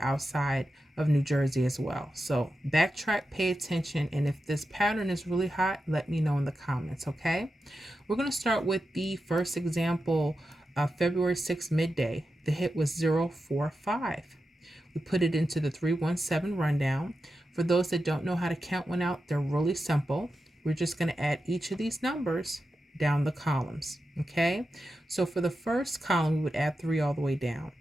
of New Jersey as well. So backtrack, pay attention, and if this pattern is really hot, let me know in the comments, okay? We're going to start with the first example, February 6th midday. The hit was 045. We put it into the 317 rundown. For those that don't know how to count one out, they're really simple. We're just going to add each of these numbers down the columns, okay? So for the first column, we would add 3 all the way down.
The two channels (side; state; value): both; normal; correlation 0.89